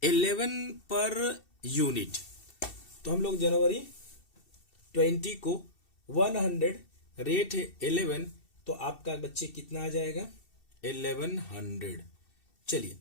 11 per unit. तो हम लोग जनवरी 20 को 100, रेट है 11, तो आपका बच्चे कितना आ जाएगा, 1100। चलिए,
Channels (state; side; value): late; right; 2.7 ms